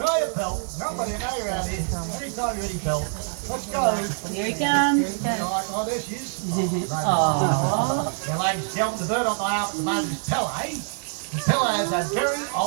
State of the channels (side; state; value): left; silent; digital silence